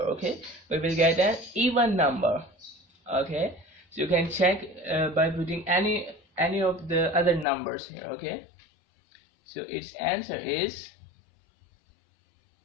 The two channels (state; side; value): drops out; right; at 7.5 s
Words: we will get an even number. Okay, so you can check by putting any of the other numbers here. Okay, so its answer is